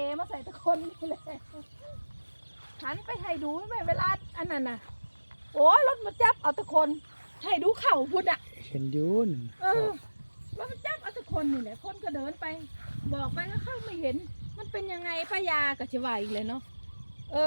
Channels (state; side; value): inverted; both; correlation -1.00